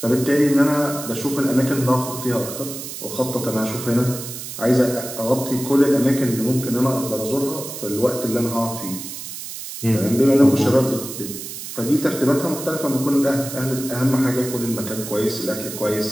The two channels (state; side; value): noise; right; hiss, 9 dB below the sound